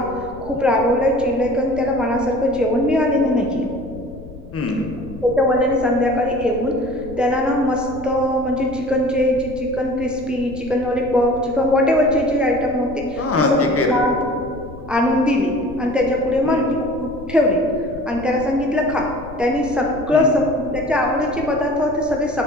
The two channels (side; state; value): left; noise; rumble, 16 dB below the sound